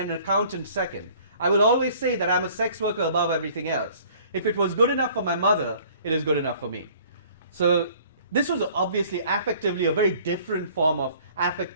accountant second. I will always say that I'm a sex worker above everything else. If it was good enough for my mother, it is good enough for me. So this was obviously affectively a very different form of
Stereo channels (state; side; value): inverted; both; correlation -0.54